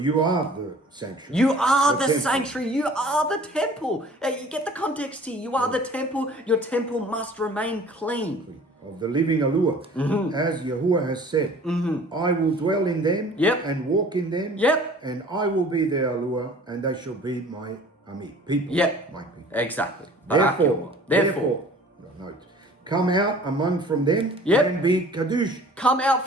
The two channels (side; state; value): both; normal; correlation 0.48